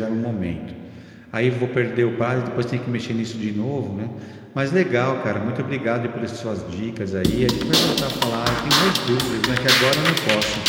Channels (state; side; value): identical; both; correlation 1.00